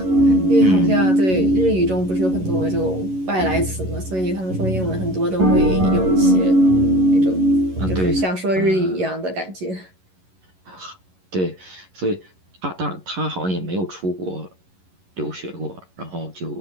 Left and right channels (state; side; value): late; left; 11 ms